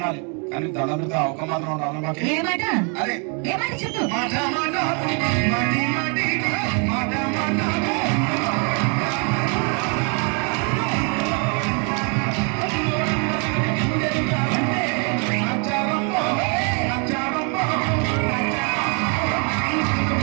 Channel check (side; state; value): left; quieter; 36.8 dB